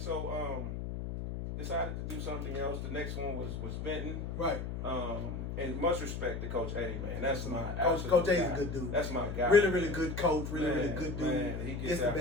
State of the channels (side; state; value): left; noise; hum, 5 dB below the sound